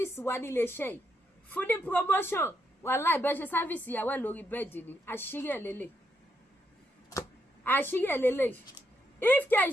wa nílé iṣẹ́ yìí fún ní promotion wàláhì bẹ́ẹ̀ ṣe sáfíìsì ìyàwó ẹ̀ lórí bẹ́ẹ̀dì ni àṣírí ẹ̀ lélẹ̀ if care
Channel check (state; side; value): normal; both; correlation 0.79